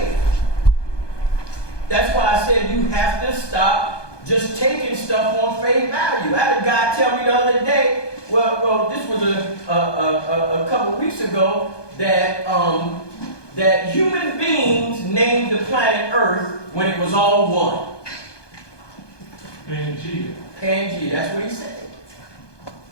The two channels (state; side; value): late; right; 1.2 ms